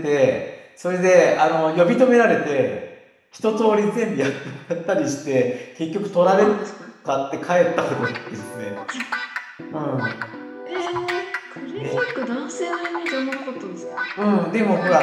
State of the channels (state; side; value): identical; both; correlation 1.00